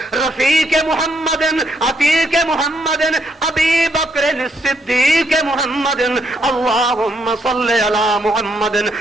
رفیق محمد عتیق محمد ابی بکر الصدیق محمد اللہم صل علی محمد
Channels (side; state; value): both; normal; correlation 0.74